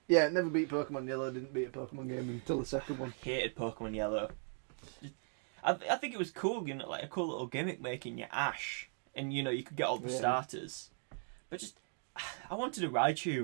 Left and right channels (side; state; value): left; silent; 52 dB below the other